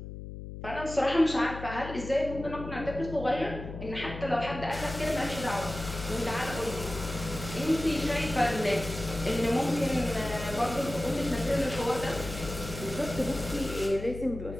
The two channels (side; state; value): left; noise; hum, 10 dB below the sound